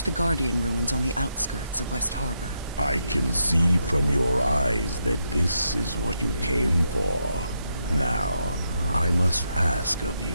the Guardian ruins on the outskirts of West Harbor. I can see from your eyes that this is what you came for. Now, I must ask of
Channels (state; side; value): inverted; both; correlation -0.81